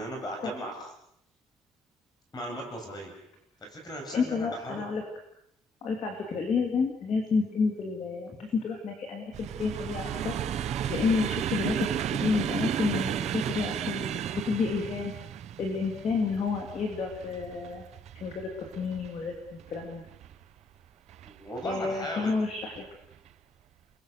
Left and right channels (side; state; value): both; normal; correlation 0.66